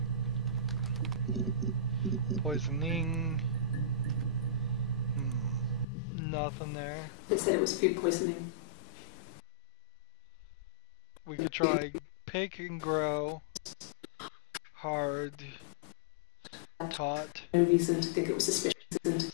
Poisoning. Nothing there. They said it was food poisoning. We could try pick and grow. Hard. Taught. No reason to think it was suspicious.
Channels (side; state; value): right; drops out; at 5.9 s